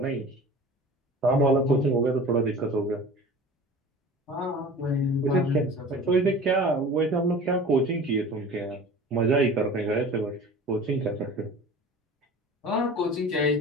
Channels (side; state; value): both; normal; correlation 0.40